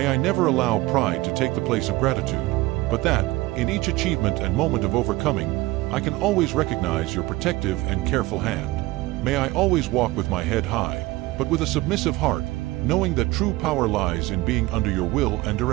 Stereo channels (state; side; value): quieter; left; 19.5 dB